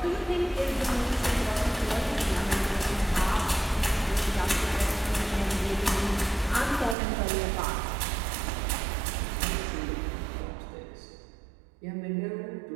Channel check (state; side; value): drops out; left; at 7.0 s